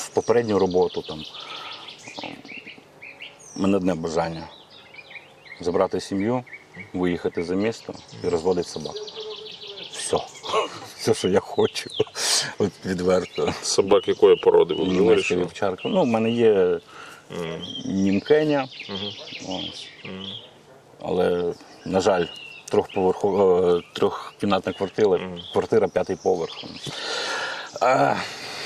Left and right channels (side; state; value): both; identical; correlation 1.00